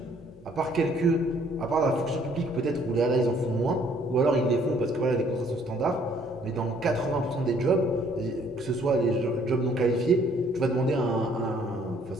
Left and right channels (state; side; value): normal; both; correlation 0.62